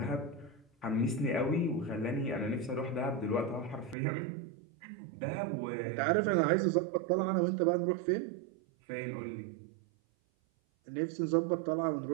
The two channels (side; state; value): left; drops out; at 4.0 s